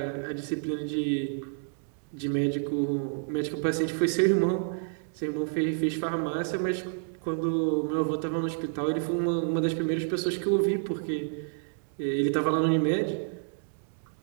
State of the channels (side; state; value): left; silent; digital silence